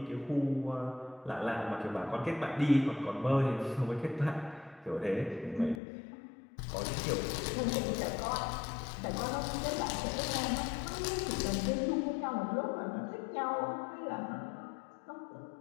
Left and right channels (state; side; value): drops out; right; at 5.8 s